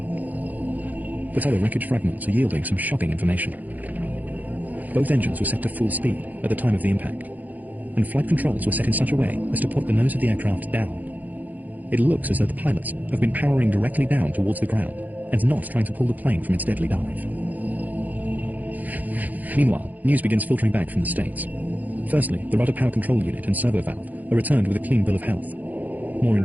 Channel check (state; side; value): late; left; 0.082 ms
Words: But other wreckage fragments are yielding some shocking information. Both engines were set to full speed at the time of the impact, and flight controls were set in such a way as to put the nose of the aircraft down. It looks as though the pilots have been powering directly down towards the ground, and not trying to pull the plane from its deadly dive. Meanwhile, news begins filtering back from the States. Firstly, the rudder power control unit and servo valve are returned with a clean bill of health. More